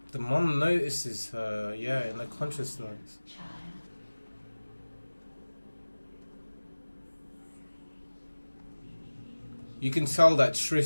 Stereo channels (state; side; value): inverted; both; correlation -1.00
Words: The mom notices her, yeah, in the consciousness. You can tell that